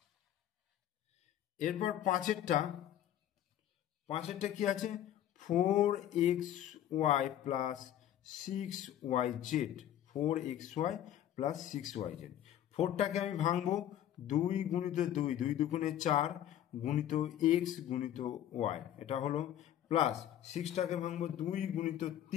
এরপর পাঁচেরটা কি আছে, 4xy plus 6yz, 4xy plus 6yz। 4টাকে আমি ভাঙবো 2 গুণিত 2, 2 দুগুণে 4 গুণিত x গুণিত y, এটা হলো, প্লাস 6টাকে ভাঙবো 2 গুণিত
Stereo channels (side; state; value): right; quieter; 11.4 dB